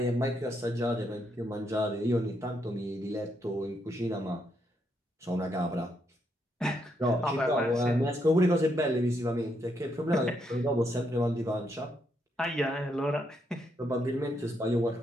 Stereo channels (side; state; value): both; normal; correlation 0.77